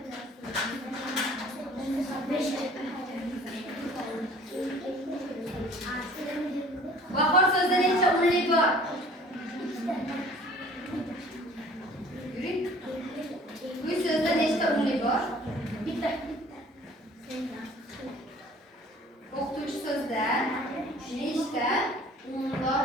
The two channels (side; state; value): both; normal; correlation 0.50